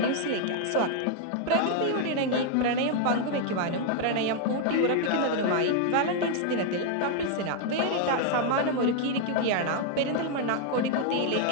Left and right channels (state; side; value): different; both; correlation 0.00